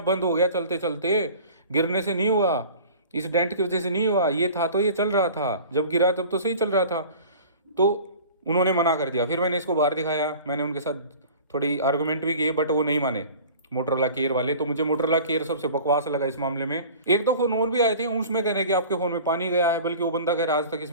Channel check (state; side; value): inverted; both; correlation -0.42